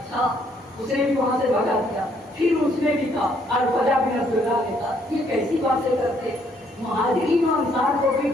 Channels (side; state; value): both; normal; correlation 0.68